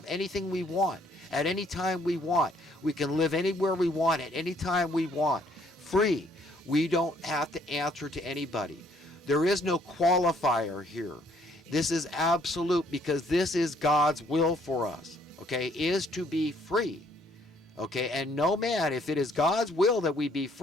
anything we want at any time we want. We can live anywhere we want at any time we want. Free. We don't have to answer to anybody. There is no qualifier here. This is absolute because this is God's will for us, okay, is to be free. Okay, and no man, if it is God's will that we be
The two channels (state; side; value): normal; both; correlation 0.65